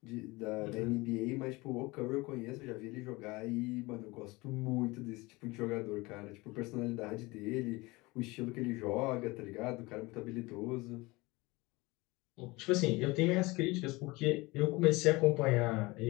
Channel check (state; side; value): quieter; right; 23.0 dB